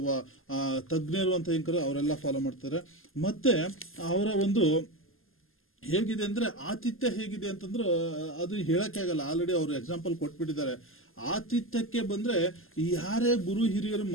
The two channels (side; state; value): right; late; 0.60 ms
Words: ತಜ್ಞರು ಅಂತ ಹೆಂಗ್ ಅವರೆಲ್ಲ ಫಾಲೋ ಮಾಡ್ತಾರೆ. ಮತ್ತೆ ಅವರ ಒಂದು ಹೇಗಿದೆ ಅಂದ್ರೆ ಆತಿಥ್ಯ ಹೇಗಿದೆ ಅಂತಂದ್ರೆ ಅದು ಹೇಳಕ್ಕೆ ಆಗಲ್ಲ. ಆಲ್ರೆಡಿ ಅವರು ಎಕ್ಸಾಂಪಲ್ ಕೊಟ್ಬಿಟ್ಟಿದ್ದಾರೆ. ಆತಿಥ್ಯಕ್ಕೆ ಬಂದ್ರೆ ಯಾರೇ ಗುರು ಹಿರಿಯರು